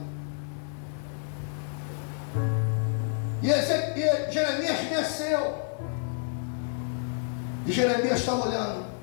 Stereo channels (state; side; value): silent; right; 58 dB below the other